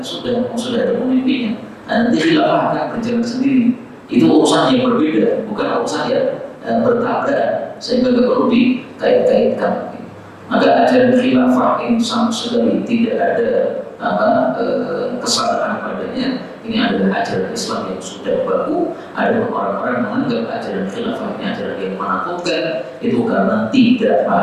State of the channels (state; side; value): identical; both; correlation 1.00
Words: sudah ada pemimpinnya. Nanti khilafah akan berjalan sendiri. Itu urusan yang berbeda, bukan urusan yang bertabrakan, sehingga nggak perlu dikait-kaitkan. Maka ajaran khilafah ini sama sekali tidak ada kesalahan padanya. Ini adalah ajaran Islam yang sudah baku. Ada orang-orang menganggap ajaran khilafah ini ajaran yang menakutkan, itu karena tidak